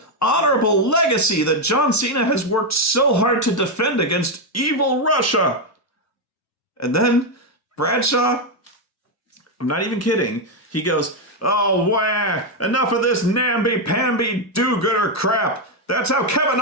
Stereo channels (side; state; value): both; normal; correlation 0.04